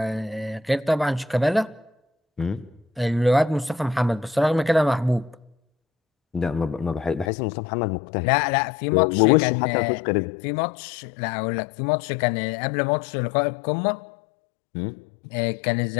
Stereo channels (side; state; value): right; drops out; at 7.3 s